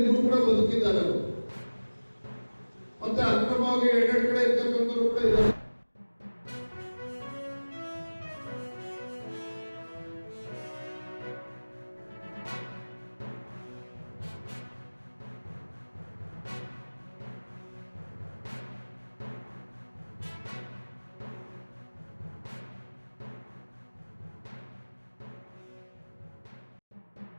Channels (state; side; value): inverted; both; correlation -1.00